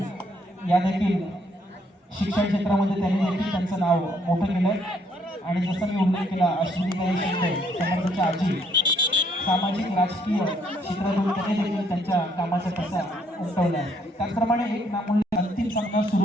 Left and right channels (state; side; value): normal; both; correlation 0.69